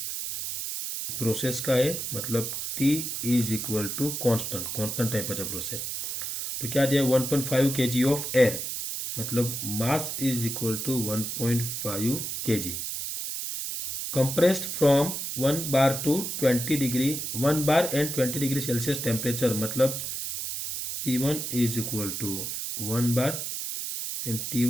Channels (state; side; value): noise; right; hiss, 4 dB below the sound